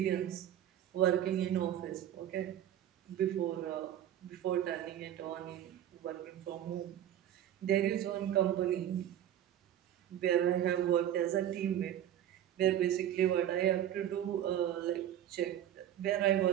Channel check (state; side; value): quieter; left; 11.1 dB